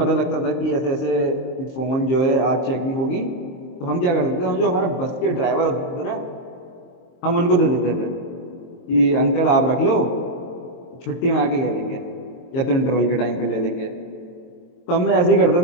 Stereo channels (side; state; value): right; late; 23 ms